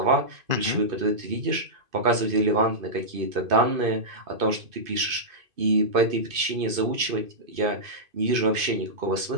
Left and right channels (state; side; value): late; left; 2.5 ms